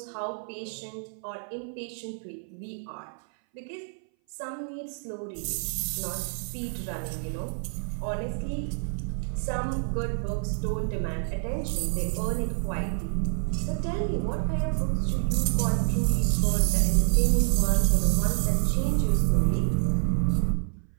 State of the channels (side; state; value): left; silent; 58 dB below the other